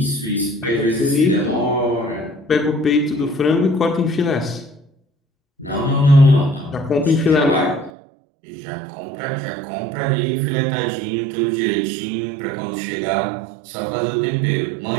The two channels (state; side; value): drops out; left; at 7.9 s